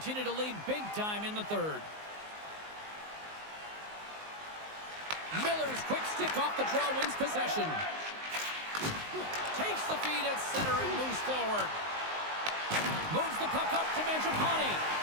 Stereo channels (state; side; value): late; left; 19 ms